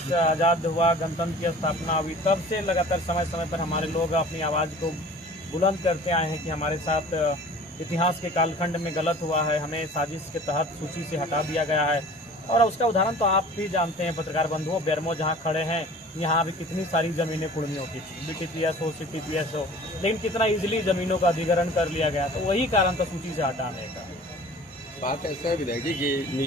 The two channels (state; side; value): normal; both; correlation 0.45